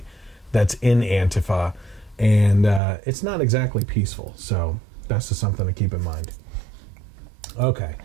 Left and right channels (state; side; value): drops out; left; at 2.8 s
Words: that's in Antifa, and it's not exactly peaceful, so that's just something to keep in mind. Okay.